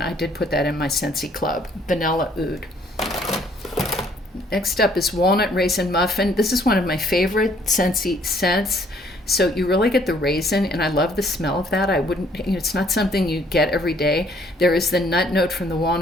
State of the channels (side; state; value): both; normal; correlation 0.63